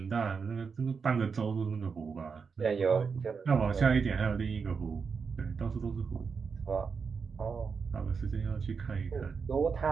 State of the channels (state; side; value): quieter; left; 5.6 dB